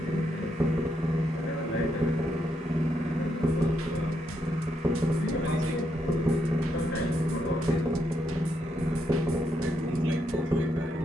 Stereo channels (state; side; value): normal; both; correlation 0.79